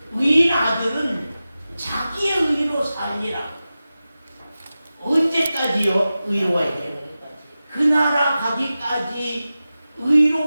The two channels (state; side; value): inverted; both; correlation -0.94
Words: 의인 아들은 자기의 의로 살리라. 언제까지요? 의로워야 돼요. 그 나라 가기까지